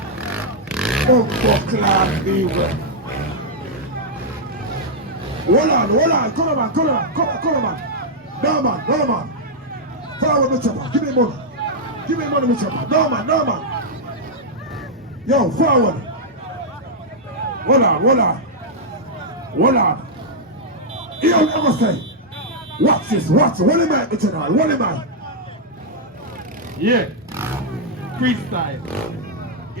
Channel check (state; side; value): normal; both; correlation -0.05